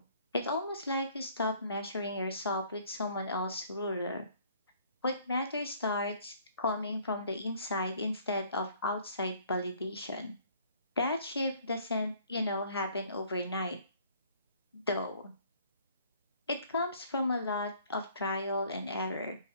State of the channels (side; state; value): both; inverted; correlation -0.58